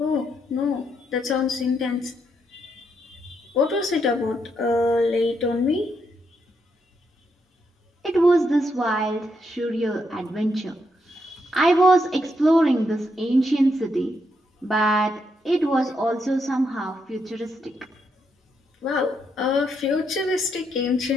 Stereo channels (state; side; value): normal; both; correlation 0.79